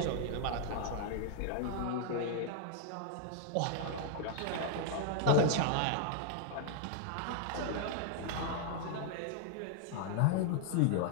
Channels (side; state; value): both; different; correlation 0.00